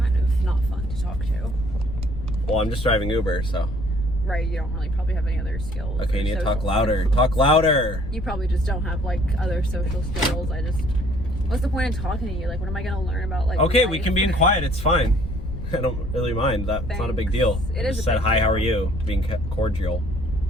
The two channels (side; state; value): left; noise; rumble, 8 dB below the sound